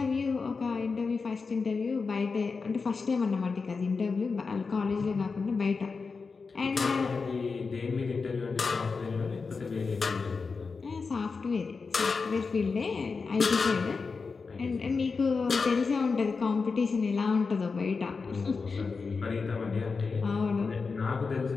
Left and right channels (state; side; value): quieter; right; 4.7 dB